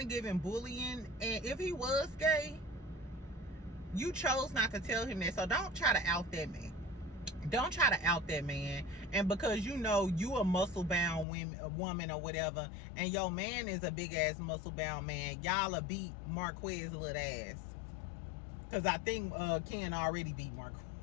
giving bullying. And if he was gay, you chose not to tell him that. So don't try to out that man. Don't try to out that man. And because you know you a muscle-bound woman or whatever, and your man is a big-ass muscle-bound man, y'all will beat Marquez little ass. Because I think Ken already beat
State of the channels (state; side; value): drops out; right; at 11.2 s